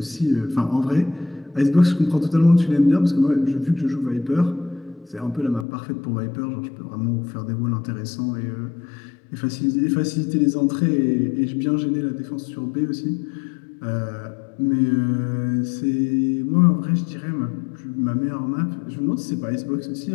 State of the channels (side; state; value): right; drops out; at 5.7 s